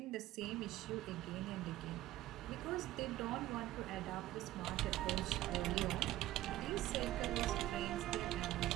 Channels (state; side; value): quieter; left; 15.1 dB